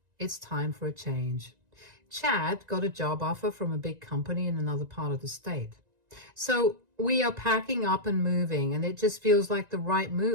it's time for a change. Chad got a job offer from a big company in another part of the state. So we are packing up and moving, and it just feels like the right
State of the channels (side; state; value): left; late; 1.9 ms